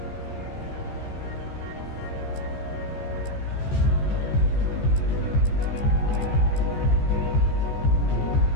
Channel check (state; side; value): late; right; 14 ms